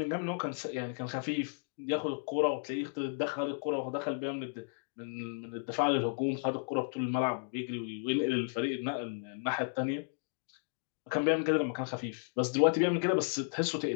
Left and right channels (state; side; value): silent; right; digital silence